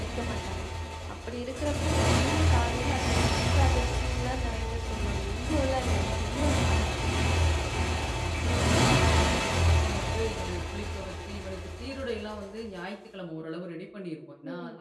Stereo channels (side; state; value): both; identical; correlation 1.00